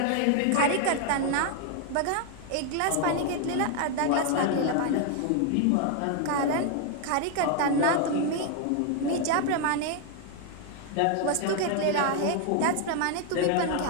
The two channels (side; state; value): both; different; correlation 0.00